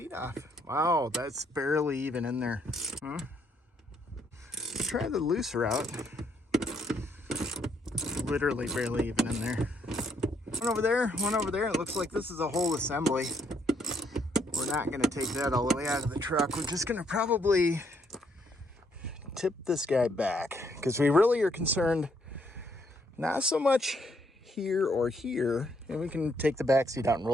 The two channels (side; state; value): both; normal; correlation 0.71